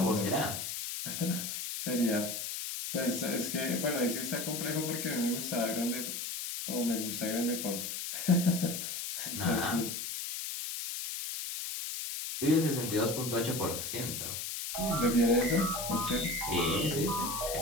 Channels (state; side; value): noise; left; hiss, 4 dB below the sound